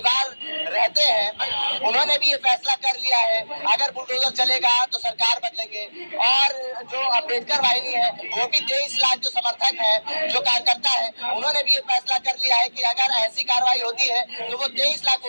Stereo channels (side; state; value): both; inverted; correlation -1.00